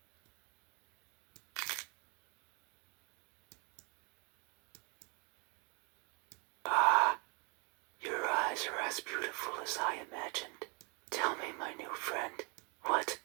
Your eyes are as beautiful as I imagined. Tell me, my new friend, what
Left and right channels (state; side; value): quieter; left; 32.8 dB